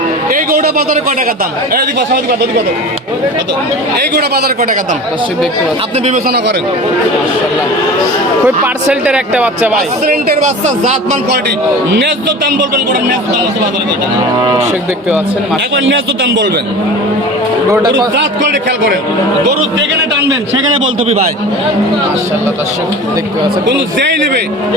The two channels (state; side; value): normal; both; correlation 0.36